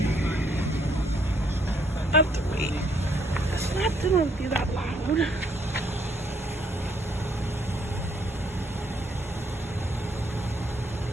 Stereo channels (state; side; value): normal; both; correlation 0.69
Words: I have to wait. It's not gonna be that loud.